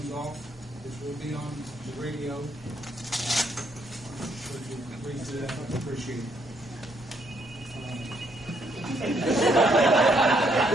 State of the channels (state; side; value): normal; both; correlation 0.72